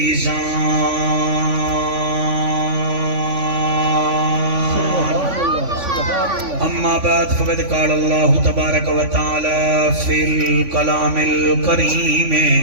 أما بعد فقد قال الله تبارك وتعالى في الكلام الكريم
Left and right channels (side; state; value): left; late; 3.5 ms